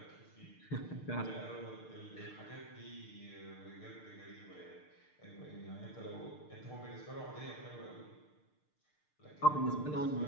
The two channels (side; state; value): right; late; 6.6 ms